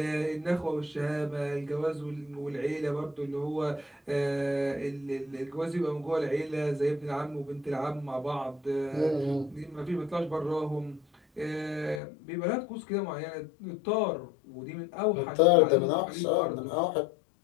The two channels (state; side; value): drops out; right; at 12.0 s